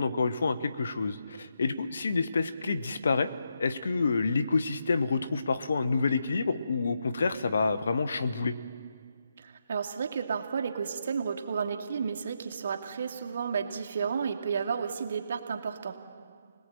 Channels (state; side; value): inverted; both; correlation -0.81